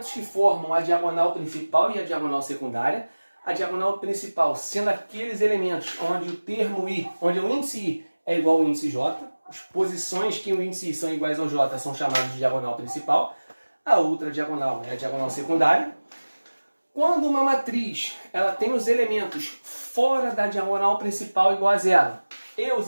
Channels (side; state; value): both; inverted; correlation -1.00